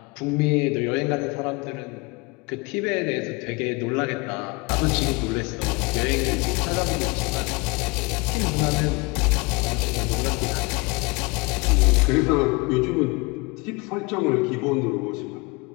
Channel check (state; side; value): quieter; right; 27.1 dB